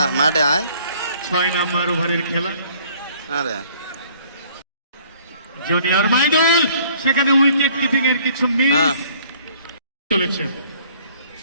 মাঠে আয় 6 নম্বর ওভারের খেলা আরে জুনিয়র মাইদুল সেখানে উইকেট কিপিং এর কিছু মিস চলেছে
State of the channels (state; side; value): inverted; both; correlation -0.58